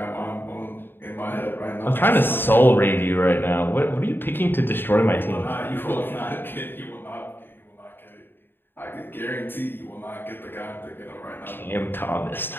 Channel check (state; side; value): late; right; 0.099 ms